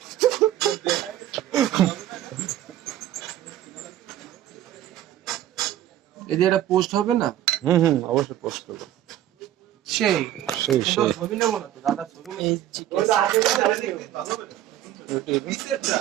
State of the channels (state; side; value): quieter; left; 12.5 dB